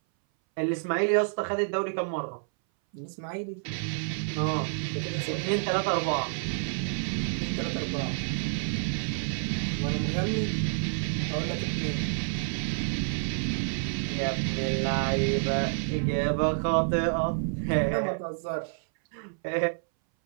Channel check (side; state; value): left; silent; 59 dB below the other